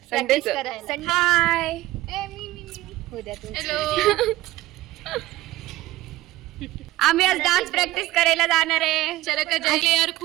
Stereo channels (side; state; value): left; quieter; 16.8 dB